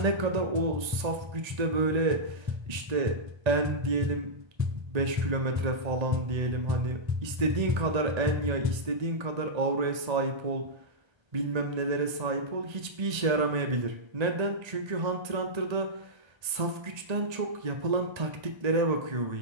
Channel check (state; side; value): late; left; 1.3 ms